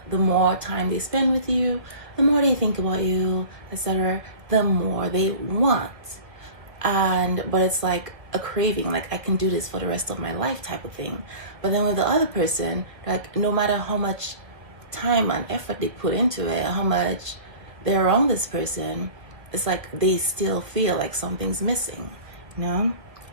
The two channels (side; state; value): left; late; 1.9 ms